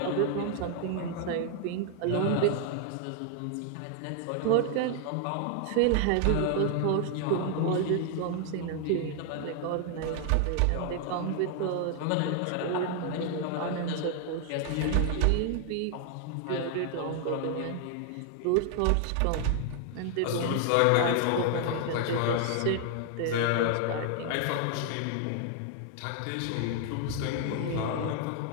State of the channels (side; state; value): both; different; correlation 0.00